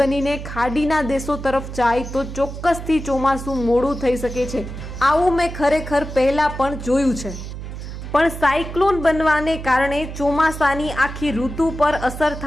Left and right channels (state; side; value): noise; right; hum, 9 dB below the sound